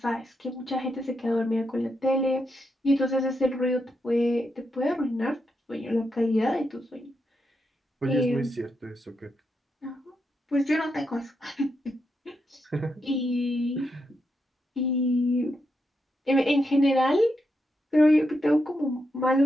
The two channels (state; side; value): normal; both; correlation 0.83